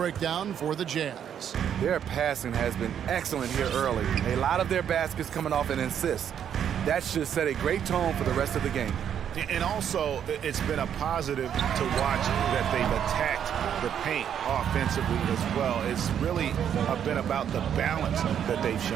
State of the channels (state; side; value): quieter; left; 9.0 dB